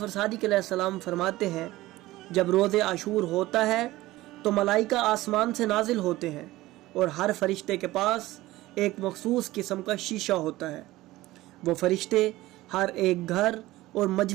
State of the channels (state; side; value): quieter; left; 17.6 dB